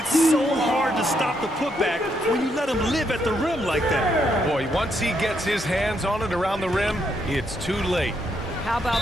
so hard to stop the putback when you let him live at the rim like that. Boy, once he gets his hands on it around the rim, it's too late. How about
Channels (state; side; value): normal; both; correlation 0.77